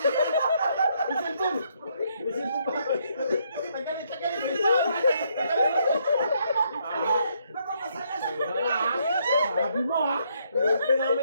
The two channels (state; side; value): inverted; both; correlation -0.72